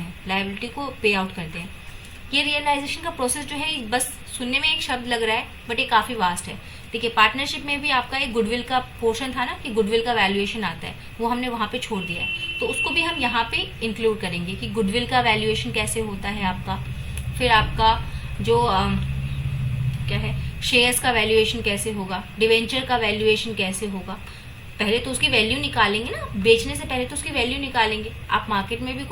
लायबिलिटी को पे आउट करते हैं। ये रियलाइजेशन का प्रोसेस जो है बस सुनने में एक शब्द लग रहा है, बट ये काफी वास्ट है। देखिए पार्टनरशिप में भी आपका एक गुडविल का पोर्शन था ना कि गुडविल का वैल्यूएशन आता है, वो हमने वहां पे छोड़ दिया है, तो उसको भी हम यहाँ पे इंक्लूड करेंगे कि गुडविल का वैल्यूएशन कैसे होता है आपका। फिर आपका जो क्या है शेयर्स का वैल्यूएशन कैसे होगा, डिवेंचर का वैल्यूएशन कैसे होगा। पहले तो उसकी वैल्यू निकालेंगे ना, बेचने से पहले तो उसकी वैल्यू निकालेंगे। आप मार्केट में भी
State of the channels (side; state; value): both; identical; correlation 1.00